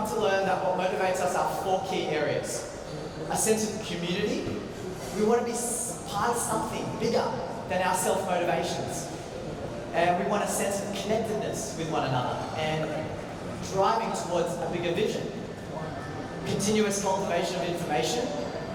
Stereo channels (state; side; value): identical; both; correlation 1.00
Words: to learn that what motivates us are 4 key areas. A sense of community. We want to be part of something bigger than our self-motivations. And we want a sense of connectedness with one another and driving towards a bigger vision. Continuous cultivation of information,